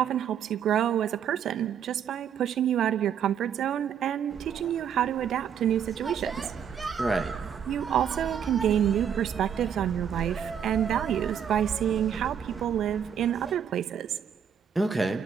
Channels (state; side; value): quieter; left; 8.3 dB